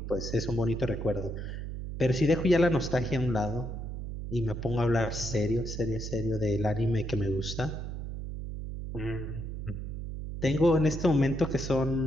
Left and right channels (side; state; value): right; noise; hum, 6 dB below the sound